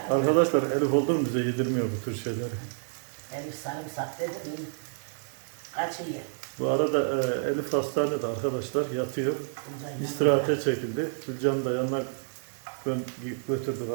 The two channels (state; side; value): silent; left; digital silence